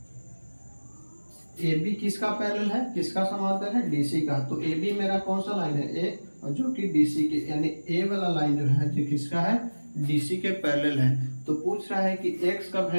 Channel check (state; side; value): inverted; both; correlation -1.00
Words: AB किसका पैरेलल है? किसका समांतर है? DC का। तो AB मेरा कौन सा लाइन है? A, और जो कि DC के, यानी A वाला लाइन जो है जो किसका है? DC के पैरेलल है। तो पूछ रहा है कि x का